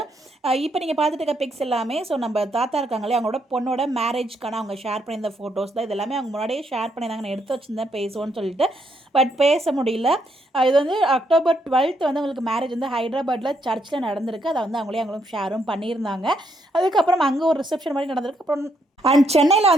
இப்போ நீங்கள் பார்த்துட்டு இருக்க பிக்ஸ் எல்லாமே நம்ம தாத்தா இருக்காங்களே அவங்களோட பொண்ணோட மேரேஜ்க்கான அவங்க ஷேர் பண்ணியிருந்த ஃபோட்டோஸ் தான். இது எல்லாமே அவங்க முன்னாடியே ஷேர் பண்ணியிருந்தாங்க. நான் எடுத்து வச்சுருந்தேன் பேசுவோன்னு சொல்லிட்டு, பட் பேச முடியல. இது வந்து அக்டோபர் 12 வந்து அவங்களுக்கு மேரேஜ் வந்து ஹைதராபாத்தில் சர்ச்சில் நடந்திருக்கு. அதை வந்து அவங்களும் ஷேரும் பண்ணியிருந்தாங்க. அதுக்கப்புறம் அங்கே ஒரு ரிசப்ஷன் மாதிரி நடந்திருக்கு. அப்புறம் அண்ட் சென்னையில்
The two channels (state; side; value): normal; both; correlation 0.75